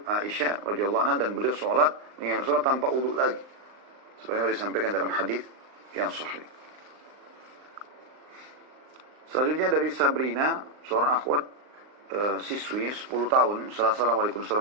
Aisyah radhiyallahu anha dan beliau sholat tanpa wudhu lagi. Sebagaimana disampaikan dalam hadis yang sahih. Selanjutnya dari Sabrina, seorang akhwat siswi 10 tahun. Assalamualaikum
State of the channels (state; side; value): late; left; 39 ms